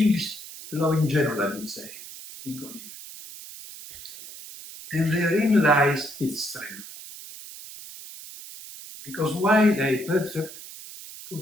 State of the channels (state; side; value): noise; right; hiss, 14 dB below the sound